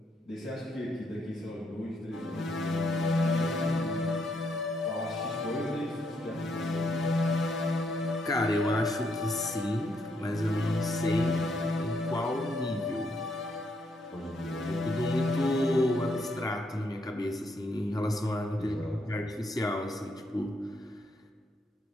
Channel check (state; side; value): normal; both; correlation 0.75